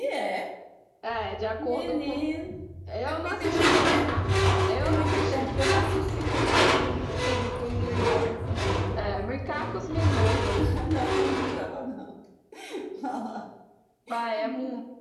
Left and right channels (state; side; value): identical; both; correlation 1.00